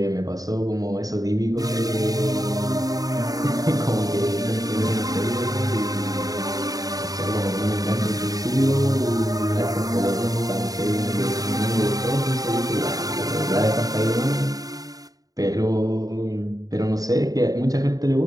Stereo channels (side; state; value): left; late; 0.18 ms